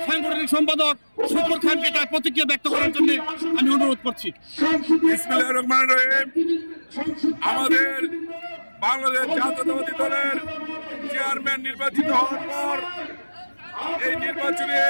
সাংগঠনিক সম্পাদক শুকুর খানকে তার প্রতিক্রিয়া ব্যক্ত করার জন্য আমি অনুরোধ করছি। বিসমিল্লাহির রহমানির রহিম। আমাদের বাংলাদেশ জাতীয়তাবাদী দলের চেয়ারম্যান নির্বাচিত হওয়ার পর এই নির্বাচনী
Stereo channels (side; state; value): both; inverted; correlation -1.00